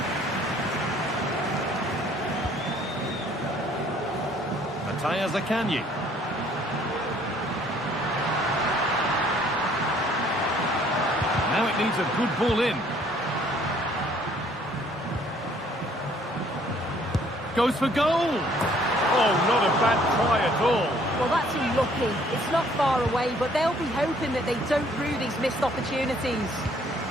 Matthias Akanji. Now it needs a good ball in. Goes for goal. Oh, not a bad try at all. Well, that's unlucky. It's not far away, but they'll be hoping that they don't rue these missed opportunities.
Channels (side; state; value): both; normal; correlation 0.61